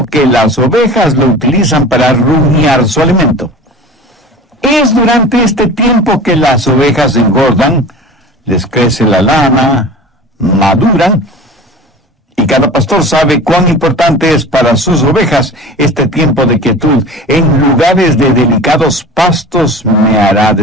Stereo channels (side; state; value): both; normal; correlation 0.37